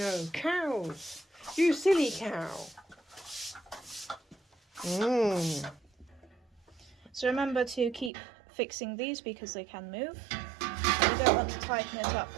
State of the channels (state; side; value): drops out; left; at 8.1 s